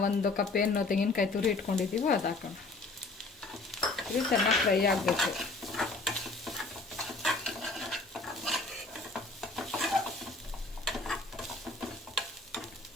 1 ಕಪ್ ಏನು ತೆಂಗಿನಕಾಯಿ ತುರಿ ಇಟ್ಕೊಂಡಿದ್ದೀವೋ ಅದು ಹಾಕೋಣ. ಇದು ಚೆನ್ನಾಗಿ ಫ್ರೈ ಆಗಬೇಕು.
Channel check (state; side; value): quieter; right; 3.3 dB